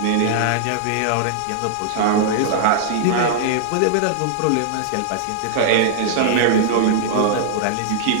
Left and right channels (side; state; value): both; different; correlation -0.01